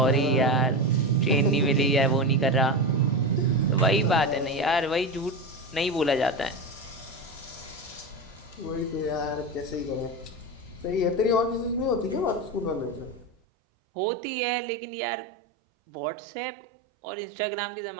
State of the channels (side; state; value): left; drops out; at 13.4 s